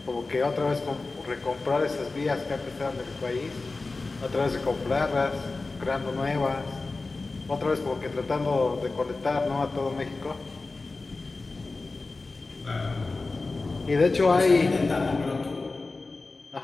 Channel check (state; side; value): quieter; right; 3.6 dB